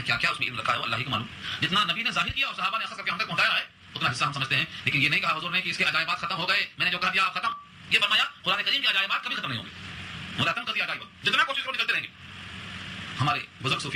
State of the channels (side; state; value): both; identical; correlation 1.00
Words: کیا کیا اس میں علم رکھا ہے اللہ ہی کو معلوم. جتنا نبی نے ظاہر کیا اور صحابہ نے اخذ کر کے ہم تک پہنچایا ہے اتنا حصہ ہم سمجھتے ہیں، لیکن یہ نہیں کہا حضور نے کہ اس کے عجائبات ختم ہو گئے، میں نے جو کہہ دیا آپ ختم. یہ فرمایا قرآن کریم کے عجائبات کبھی ختم نہیں ہوں گے، مدتن کبھی عجائبات جتنا کوشش کرو نکلتے رہیں گے. ہمارے بزرگ